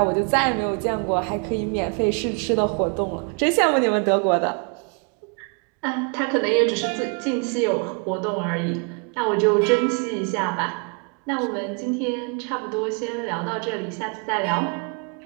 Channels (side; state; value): left; quieter; 36.9 dB